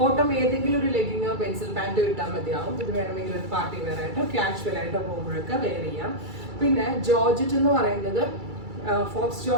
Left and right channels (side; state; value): left; late; 2.3 ms